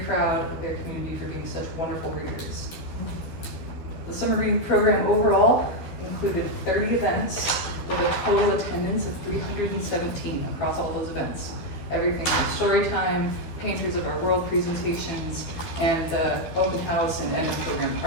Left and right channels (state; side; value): late; right; 13 ms